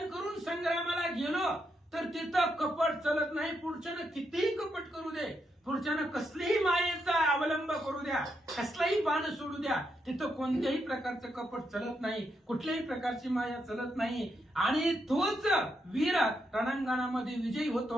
करून संग्रामाला गेलो तर तिथं कपट चलत नाही. पुढच्यानं कितीही कपट करू दे, पुढच्यानं कसलीही मायेचा अवलंब करू द्या, कसलाही बाण सोडू द्या, तिथं कोणत्याही प्रकारचं कपट चलत नाही, कुठल्याही प्रकारची माया चलत नाही. आणि तोच वीर रणांगणामध्ये विजयी होतो.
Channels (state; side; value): normal; both; correlation 0.81